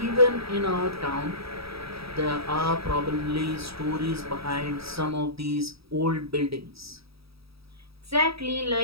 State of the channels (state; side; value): late; left; 0.77 ms